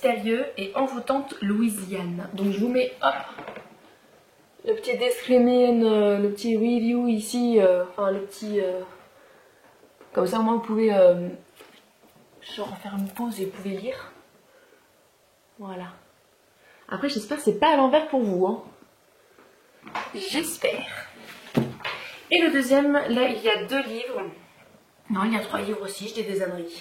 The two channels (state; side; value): identical; both; correlation 1.00